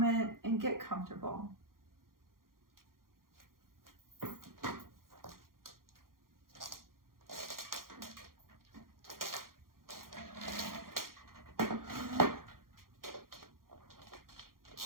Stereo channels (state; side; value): late; left; 0.92 ms